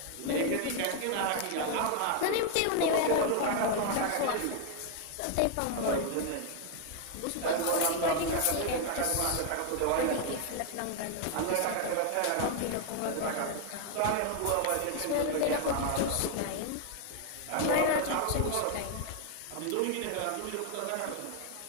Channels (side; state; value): both; different; correlation 0.00